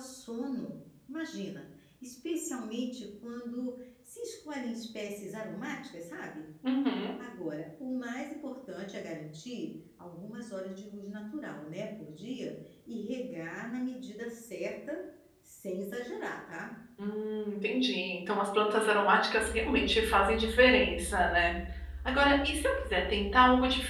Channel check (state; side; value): identical; both; correlation 1.00